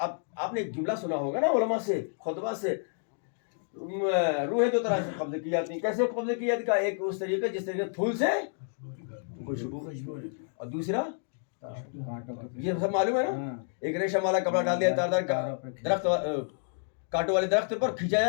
آپ نے ایک جملہ سنا ہوگا نا علماء سے، خطبہ سے، روحیں دو طرح سے قبض کی جاتی ہیں۔ کیسے قبض کی جاتی ہے؟ ایک اس طریقے جس طریقے پھول سے خوشبو، اور دوسرا یہ سب معلوم ہے نا، ایک ریشم والا کپڑا ڈال دیا تار کا درخت، کانٹوں والے درخت پر کھینچا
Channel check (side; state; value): right; silent; digital silence